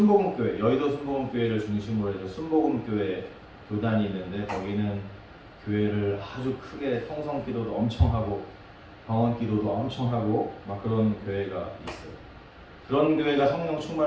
여의도 순복음교회를 중심으로 해서 순복음교회 교단이 있는데, 거기는 교회를 아주 크게 통성 기도도 엄청 하고 방언 기도도 엄청 하고 막 그런 교회가 있어요. 그런 교회가 성령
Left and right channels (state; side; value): identical; both; correlation 1.00